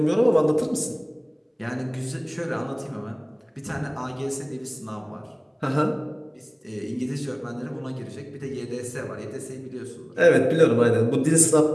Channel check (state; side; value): identical; both; correlation 1.00